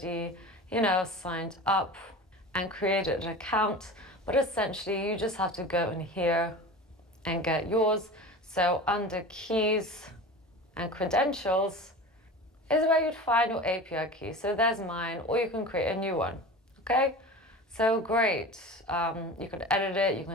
signed up and created an account, but essentially you just have to go in here and get yours. So under keys and credentials is where you'd find your API key. So there's mine, or you can create a new one. Okay, so great. You can edit it, you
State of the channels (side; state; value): both; normal; correlation 0.34